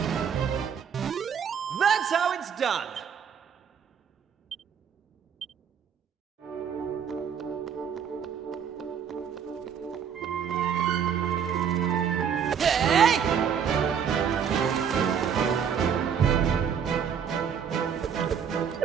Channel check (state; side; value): quieter; left; 7.6 dB